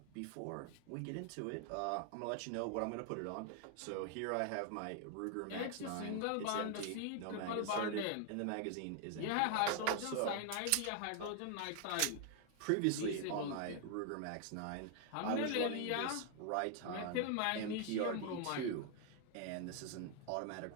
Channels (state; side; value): different; both; correlation 0.00